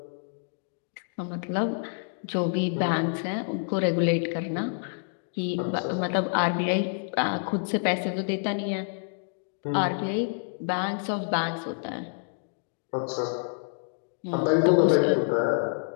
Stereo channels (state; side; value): silent; right; digital silence